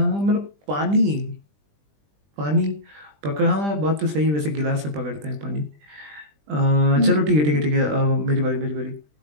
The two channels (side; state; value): left; late; 20 ms